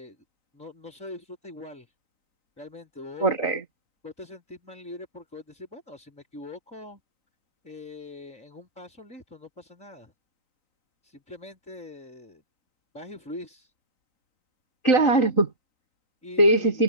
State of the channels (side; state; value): right; late; 3.9 ms